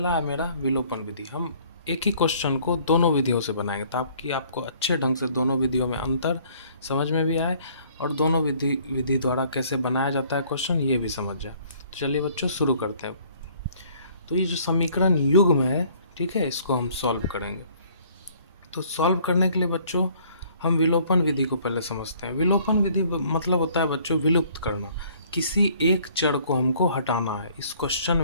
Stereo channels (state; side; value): inverted; both; correlation -0.58